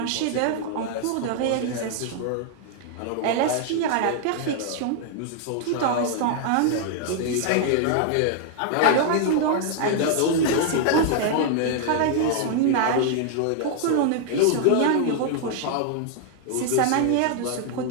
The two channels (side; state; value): both; different; correlation 0.00